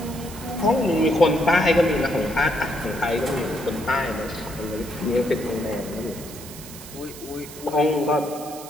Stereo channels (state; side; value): noise; right; hiss, 15 dB below the sound